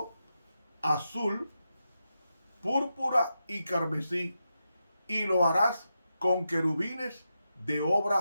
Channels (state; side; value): inverted; both; correlation -0.88